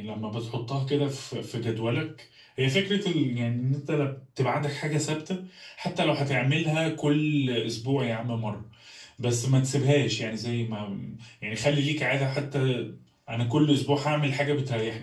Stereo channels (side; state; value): both; identical; correlation 1.00